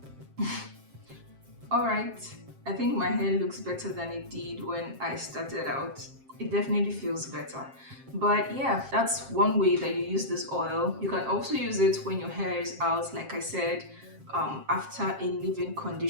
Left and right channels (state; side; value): late; left; 7.5 ms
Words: Alright, I think my hair looks better than it did when I started out. It definitely feels better. But yeah, that's one way that you use this oil. You can also use it when your hair is out, like I said, after a leave-in